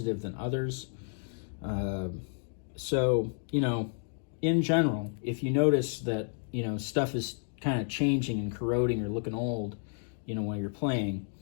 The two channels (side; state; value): right; silent; 57 dB below the other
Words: than others. So, you know, in general, if you notice that, you know, stuff is kind of changing and corroding or looking old, you know, while you're playing,